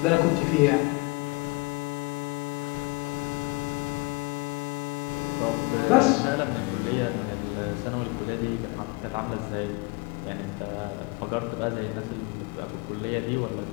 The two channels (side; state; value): right; quieter; 26.7 dB